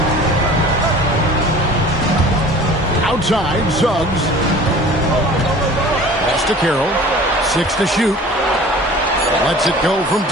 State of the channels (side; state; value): both; normal; correlation 0.44